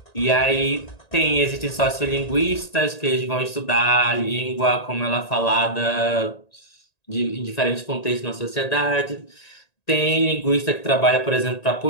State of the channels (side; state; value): right; late; 1.8 ms